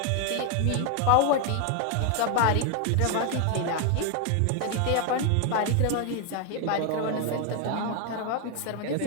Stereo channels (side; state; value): both; different; correlation 0.00